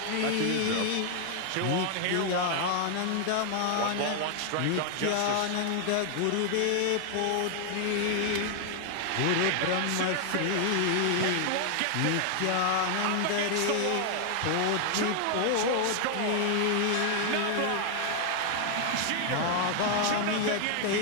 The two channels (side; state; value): both; different; correlation 0.00